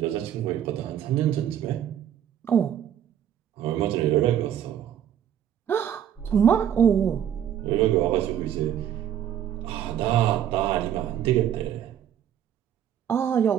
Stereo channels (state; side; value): quieter; left; 10.0 dB